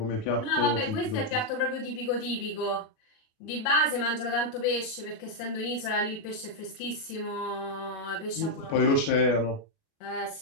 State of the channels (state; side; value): late; right; 37 ms